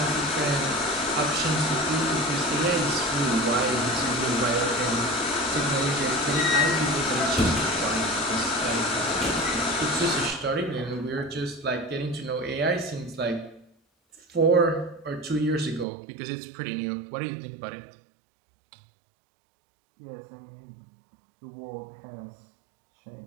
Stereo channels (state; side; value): drops out; left; at 15.9 s